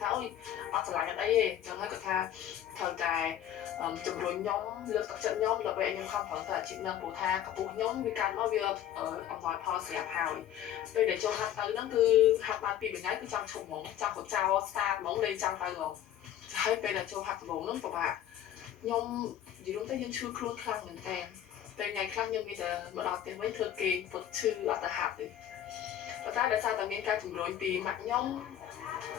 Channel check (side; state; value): right; quieter; 11.1 dB